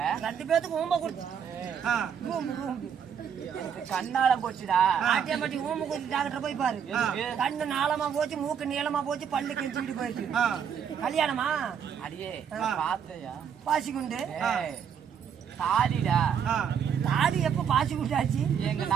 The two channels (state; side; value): quieter; left; 7.8 dB